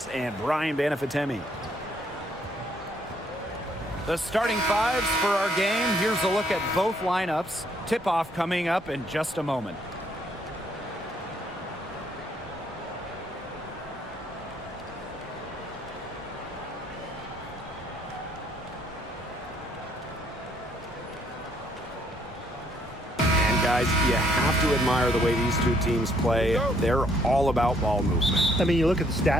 and Brian Banafitemi. The starting fives for our game. Here's a look at both lineups. Tip-off coming up in just a moment. Guys, you have to admire the way these two teams play. They're all about ball movement. I mean, you look at the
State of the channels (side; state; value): both; normal; correlation 0.67